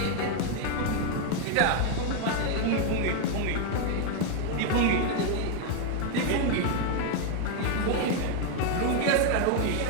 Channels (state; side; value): different; both; correlation 0.00